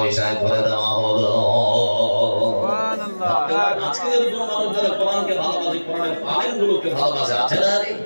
করে দেওয়া হলো। আজকে যদি কোনো মানুষ যারা কোরআনকে ভালোবাসে, কোরআনের আলেমগুলোকে ভালোবাসে, আছে না?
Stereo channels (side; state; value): both; inverted; correlation -1.00